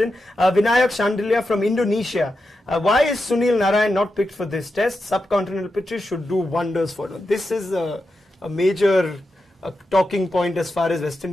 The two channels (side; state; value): both; normal; correlation 0.88